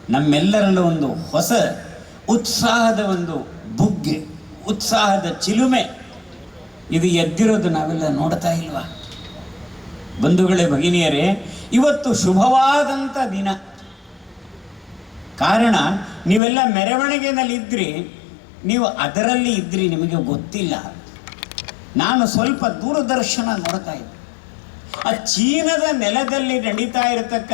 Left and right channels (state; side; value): drops out; right; at 16.4 s